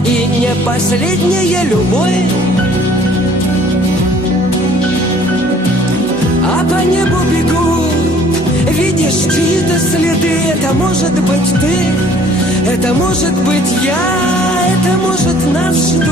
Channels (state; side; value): normal; both; correlation 0.56